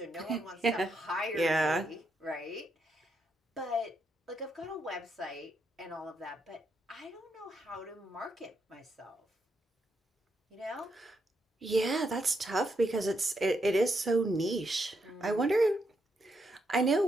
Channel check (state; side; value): normal; both; correlation 0.80